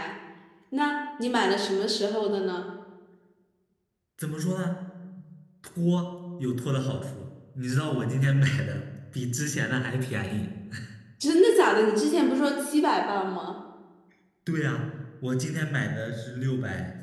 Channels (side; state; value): both; identical; correlation 1.00